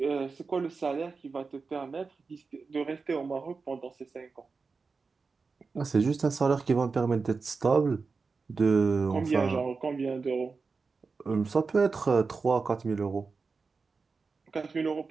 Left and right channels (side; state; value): left; quieter; 4.6 dB